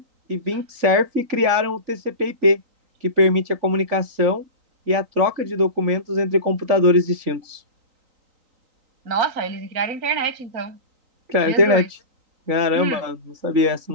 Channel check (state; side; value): late; left; 3.9 ms